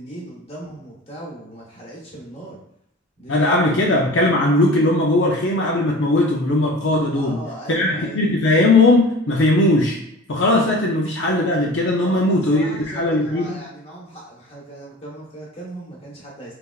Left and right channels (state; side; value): normal; both; correlation 0.39